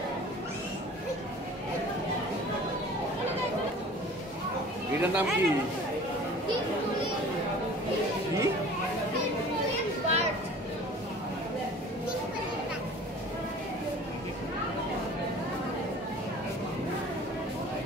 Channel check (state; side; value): normal; both; correlation 0.45